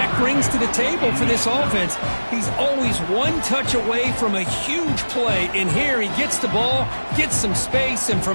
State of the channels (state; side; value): inverted; both; correlation -1.00